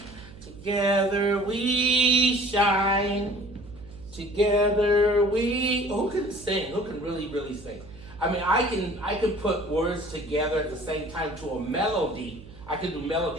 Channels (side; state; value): right; noise; hum, 18 dB below the sound